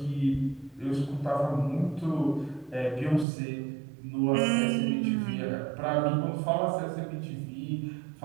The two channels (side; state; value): left; drops out; at 3.2 s